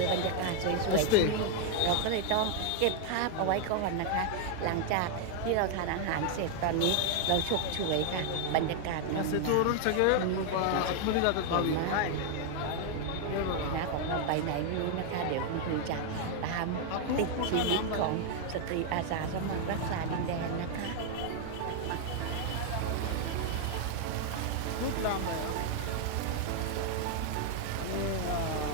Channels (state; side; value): different; both; correlation 0.00